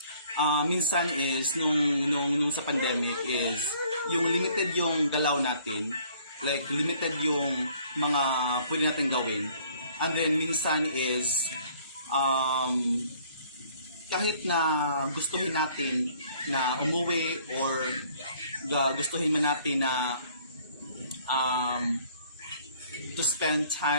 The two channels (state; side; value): inverted; both; correlation -0.58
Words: minsan is, nung sa pandemic is, yung limited yung galaw natin, like limited yung mga pwede natin gawin, and then minsan is, kahit na gustuhin natin na umuwi or gustuhin man natin na to spend